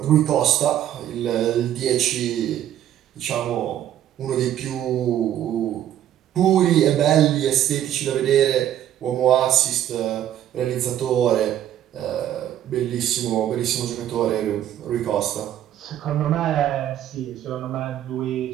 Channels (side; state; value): left; quieter; 11.3 dB